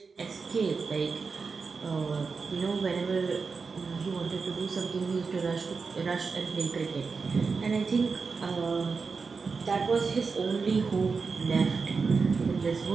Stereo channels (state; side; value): quieter; left; 4.8 dB